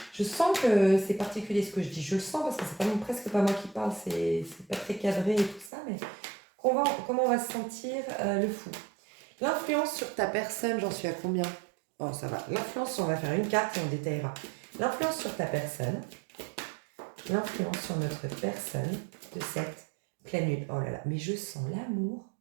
Je sens que c'est particulier ce que je dis. Je le sens parce que c'est presque pas moi qui parle, c'est pas très cadré et tout ça, mais comment on va se sentir le fou. L'influence sur ta personne, j'en suis à combien? Oh, ça va. L'influence, on va faire une carte et on détaillera. L'influence sur ta personne, l'influence sur notre personne de cette pleine lune. Oh là là, mais je sens l'amour.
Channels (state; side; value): drops out; left; at 5.7 s